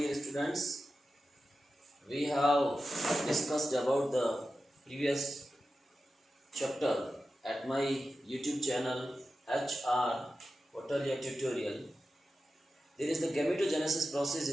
students. We have discussed about the previous chapter at my YouTube channel HR Hotelia Tutorial. There is the gametogenesis process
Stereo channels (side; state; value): both; normal; correlation 0.92